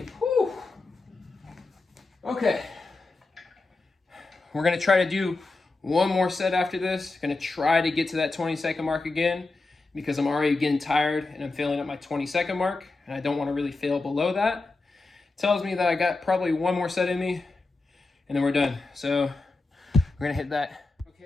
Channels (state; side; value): quieter; right; 3.5 dB